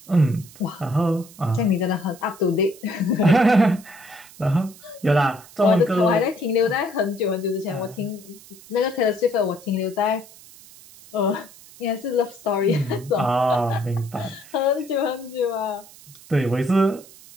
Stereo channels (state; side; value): noise; right; hiss, 21 dB below the sound